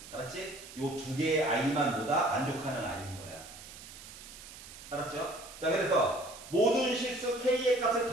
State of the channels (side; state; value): right; noise; hiss, 15 dB below the sound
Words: 알았지? 요 2개의 아이만 보다 만족하는 아이인 거야. 알았죠? 자, 그래서 모든 실수 k의 값을